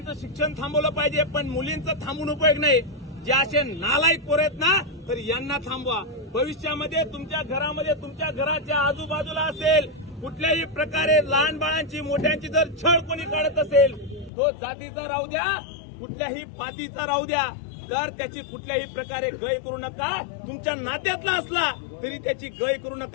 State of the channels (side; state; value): right; drops out; at 14.3 s